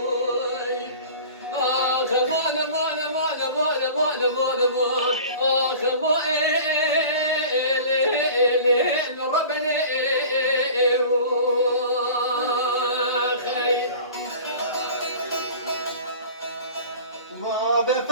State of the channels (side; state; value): both; inverted; correlation -0.41